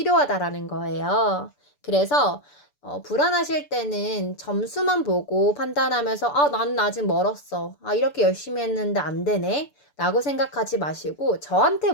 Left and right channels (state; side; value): late; right; 6.9 ms